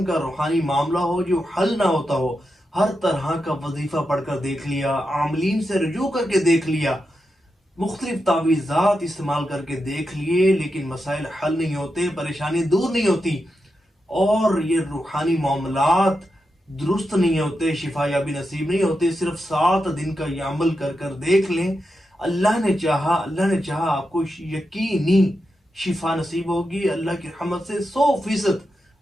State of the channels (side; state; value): both; normal; correlation 0.88